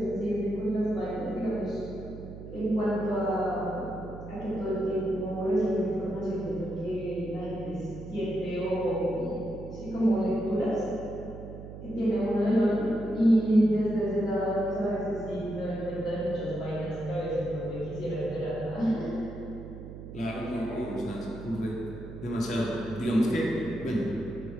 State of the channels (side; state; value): right; noise; hum, 12 dB below the sound